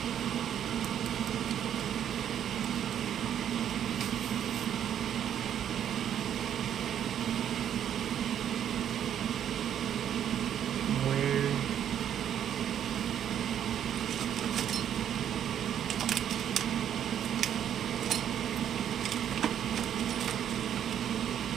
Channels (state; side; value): quieter; left; 9.7 dB